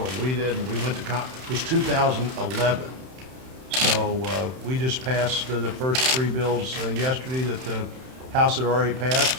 and we did, and we went to it was 2011. So we just passed the first three bills yesterday that the House had already passed,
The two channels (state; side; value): late; left; 31 ms